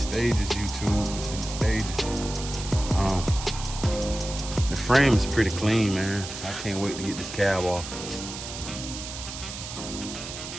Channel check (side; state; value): right; noise; hiss, 9 dB below the sound